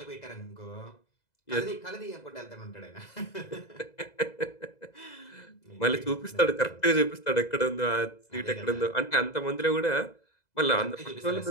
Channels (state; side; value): late; right; 2.0 ms